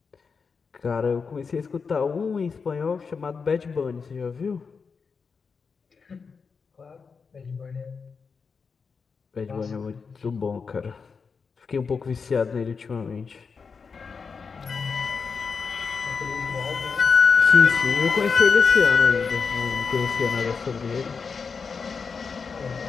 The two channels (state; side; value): quieter; right; 5.3 dB